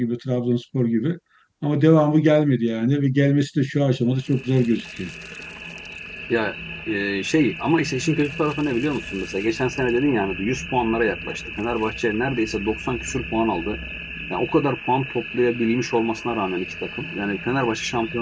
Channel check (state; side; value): identical; both; correlation 1.00